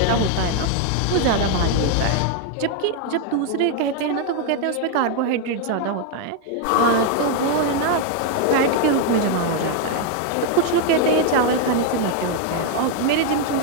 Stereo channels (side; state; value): both; different; correlation 0.01